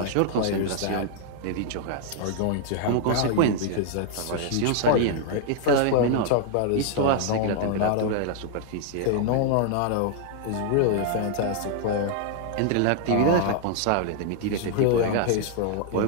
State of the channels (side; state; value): both; different; correlation -0.01